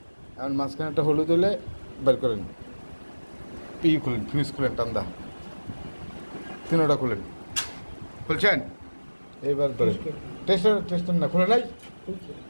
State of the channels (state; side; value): inverted; both; correlation -1.00